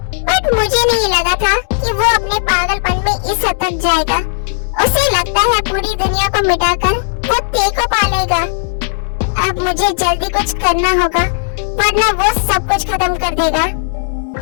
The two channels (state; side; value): silent; right; digital silence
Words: बट मुझे नहीं लगा था कि वो अपने पागलपन में इस हद तक जाएगा। उसे लगता है पूरी दुनिया को मिटाकर वो टी को पालेगा। अब मुझे जल्दी कुछ करना होगा, वरना वो सब कुछ खत्म कर देगा।